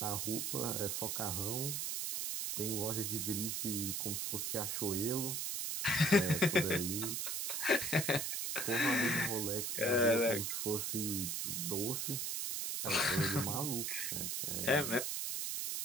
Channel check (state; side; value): noise; right; hiss, 1 dB below the sound